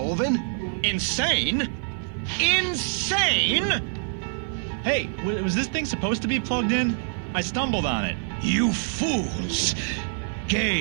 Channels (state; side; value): silent; left; 61 dB below the other